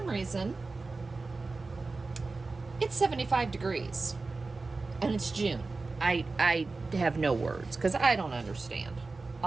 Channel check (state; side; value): quieter; left; 3.7 dB